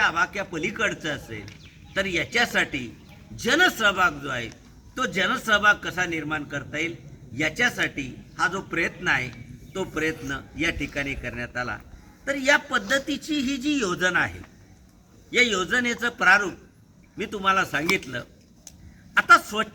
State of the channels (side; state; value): both; identical; correlation 1.00